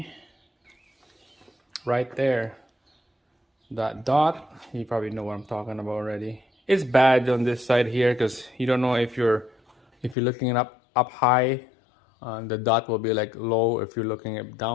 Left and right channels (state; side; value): drops out; right; at 10.2 s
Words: right there that dot. You probably know what I'm talking about already. It's bad on this side here because you don't know if you're looking it up high, the dot will be like low. If you're looking it